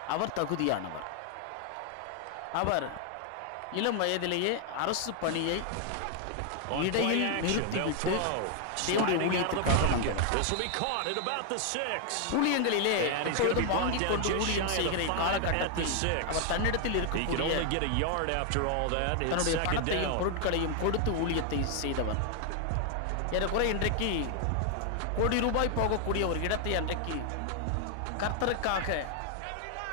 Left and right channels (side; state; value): both; different; correlation 0.00